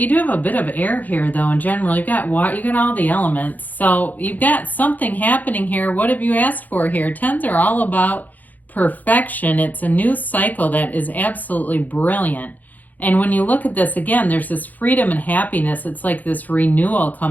have a bit of air here though in general. You've got water, you got all the elements. So you've got something happening here. What have you asked for here? Tens are all about perfection. It's a new cycle that is absolutely brilliant. And when you look at this again, there's this freedom and happiness. It's like this renewal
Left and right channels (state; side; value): late; right; 0.082 ms